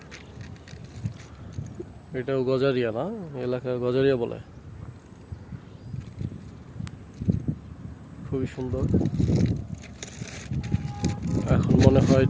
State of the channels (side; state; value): both; identical; correlation 1.00